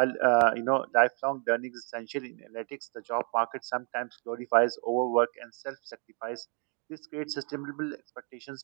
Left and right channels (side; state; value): left; quieter; 39.8 dB